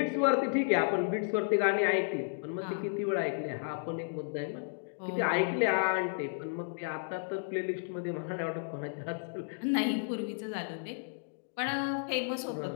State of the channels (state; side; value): silent; right; digital silence